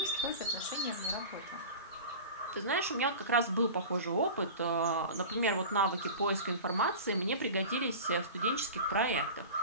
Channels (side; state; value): both; inverted; correlation -0.34